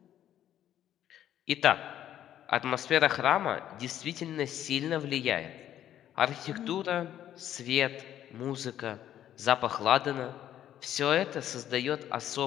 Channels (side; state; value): right; quieter; 11.3 dB